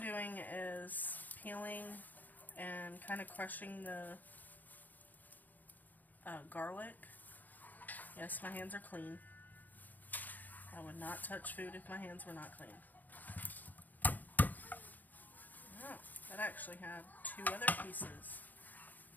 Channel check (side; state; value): right; late; 0.084 ms